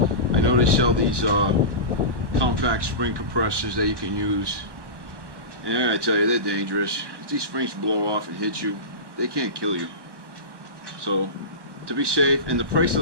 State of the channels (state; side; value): late; left; 1.1 ms